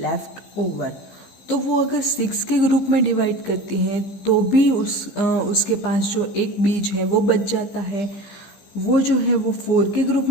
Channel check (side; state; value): right; late; 15 ms